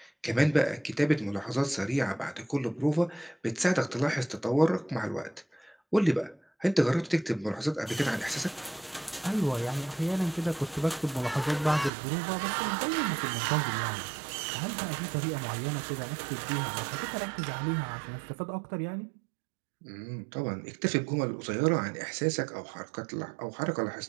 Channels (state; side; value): drops out; left; at 11.9 s